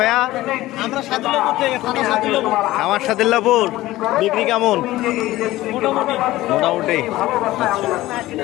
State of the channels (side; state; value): right; quieter; 16.8 dB